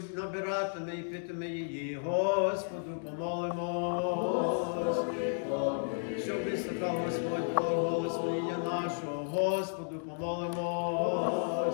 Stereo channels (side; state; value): right; silent; digital silence